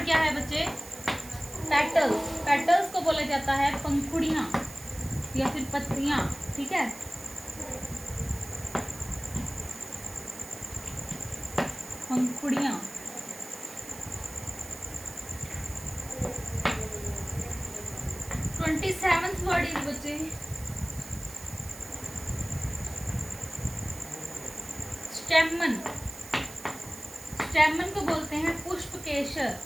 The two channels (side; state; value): right; noise; hiss, 15 dB below the sound